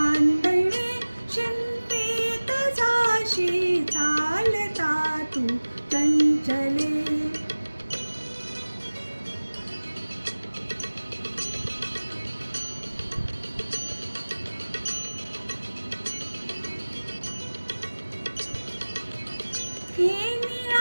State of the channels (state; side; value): inverted; both; correlation -1.00